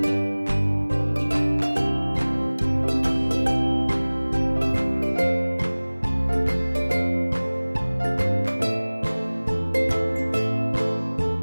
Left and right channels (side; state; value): both; inverted; correlation -1.00